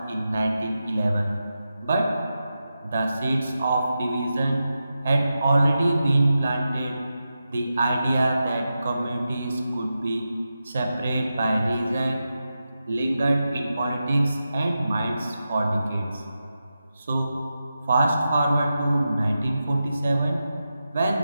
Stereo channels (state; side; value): inverted; both; correlation -0.90